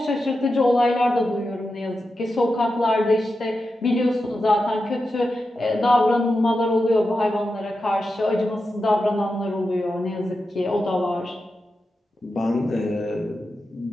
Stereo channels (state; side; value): normal; both; correlation 0.90